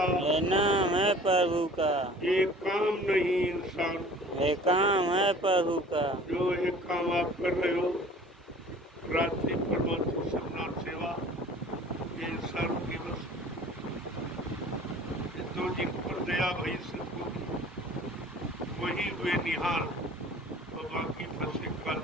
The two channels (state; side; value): normal; both; correlation 0.47